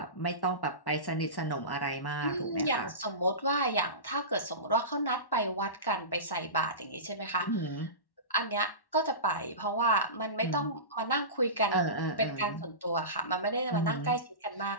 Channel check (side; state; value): right; late; 1.1 ms